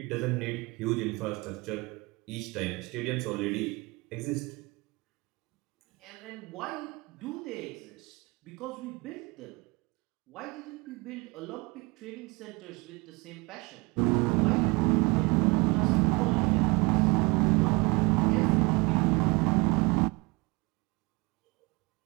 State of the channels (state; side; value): quieter; left; 26.2 dB